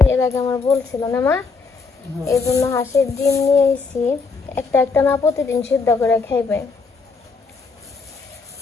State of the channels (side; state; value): right; quieter; 4.5 dB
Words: এর আগে আমার বলছিল না মা, এই জন্য হাঁসের ডিম নিয়ে আইছি। একটা একটা না প্রতিদিন সিদ্ধ করে খাইবে।